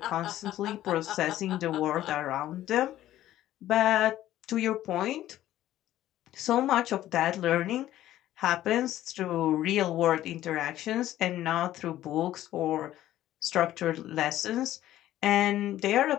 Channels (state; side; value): quieter; right; 13.6 dB